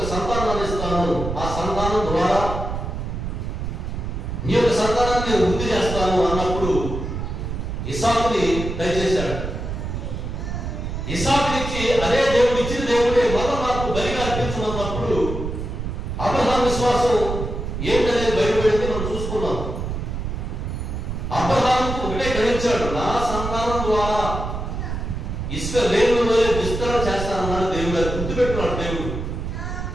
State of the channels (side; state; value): right; noise; rumble, 5 dB below the sound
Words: సంతానాన్ని ఇస్తాను, ఆ సంతానం ద్వారా నీ యొక్క సంతానాన్ని నేను వృద్ధి చేస్తాను అన్నప్పుడు ఇస్సాకుని దయచేశాడు. ఇస్సాకునిచ్చి అదే దేవుడు ఇచ్చిన దేవుడే మళ్ళా నాకు బలిగా అర్పించమన్నప్పుడు అబ్రహాం విశ్వాసం ఏంటనేది బయటపడింది మనం చూసుకున్నాం. ఇచ్చాడు. నా సంతానం ద్వారా ఇసుక రేణువులో విస్తరణ చేస్తానన్నాడు దేవుడు. అది గుర్తుపెట్టుకున్నాడు దేవుడు.